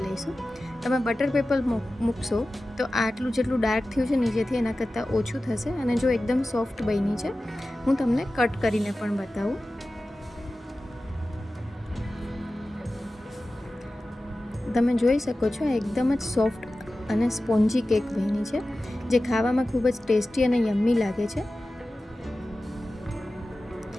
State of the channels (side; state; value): both; normal; correlation 0.95